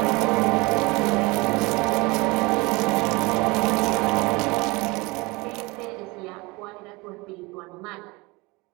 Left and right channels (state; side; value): quieter; left; 24.6 dB